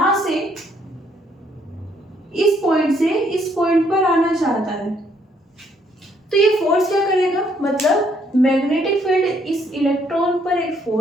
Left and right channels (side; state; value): both; normal; correlation 0.68